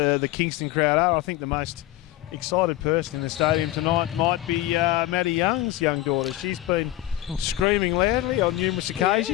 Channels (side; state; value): right; quieter; 15.3 dB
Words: Kingston crowd are, I think the most excited person in the stadium tonight might be Maddie Young's young daughter. She's been screaming loudly on numerous